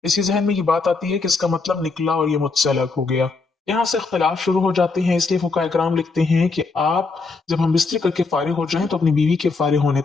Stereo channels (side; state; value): right; quieter; 4.1 dB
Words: इसी जहन में ये बात आती है कि इसका मतलब निकला और ये मुझसे अलग हो गया। यहाँ से इख्तलाफ शुरू हो जाते हैं। इसलिए फुकाहे कराम लिखते हैं कि आप जब हम बिस्तरी करके फारिग हो जाएं तो अपनी बीवी के फारिग होने